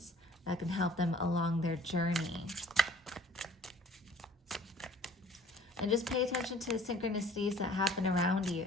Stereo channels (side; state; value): both; normal; correlation 0.52